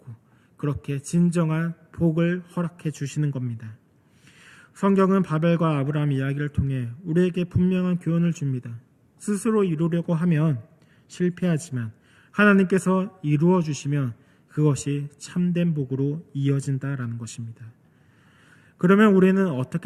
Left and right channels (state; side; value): identical; both; correlation 1.00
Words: 그렇게 진정한 복을 허락해 주시는 겁니다. 성경은 바벨과 아브라함 이야기를 통해 우리에게 분명한 교훈을 줍니다. 스스로 이루려고 하면 실패하지만 하나님께서 이루어 주시면 그것이 참된 복으로 이어진다라는 것입니다. 그러면 우리는